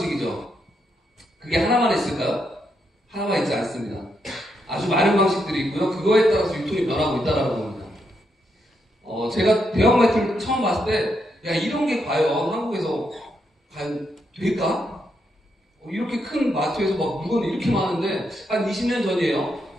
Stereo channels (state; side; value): normal; both; correlation 0.80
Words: 그게 하나만 있을까요? 하나만 있지 않습니다. 아주 많은 방식들이 있고요. 그거에 따라서 유통이 변하고 있다는 겁니다. 제가 대형마트를 처음 봤을 때, 야, 이런 게 과연 한국에서 과연 될까? 이렇게 큰 마트에서 막 물건이 이렇게 많은데, 한 20년 전이에요.